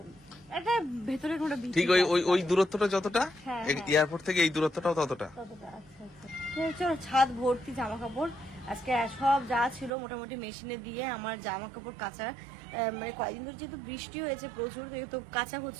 একটা ভেতরে কোনো ঠিক ওই দূরত্বটা যতটা এয়ারপোর্ট থেকে এই দূরত্বটাও ততটা। আচ্ছা চলো, ছাদ ভর্তি জামা কাপড়। আজকে সব যা ছিল মোটামুটি মেশিনে দিয়ে আমার জামা কাপড় কাচা, মানে কয়েকদিন ধরে যেহেতু বৃষ্টি হয়েছে প্রচুর, তো কাঁচা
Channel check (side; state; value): left; drops out; at 9.9 s